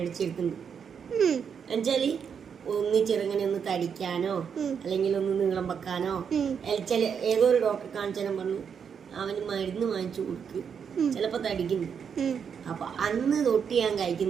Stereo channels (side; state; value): left; quieter; 7.1 dB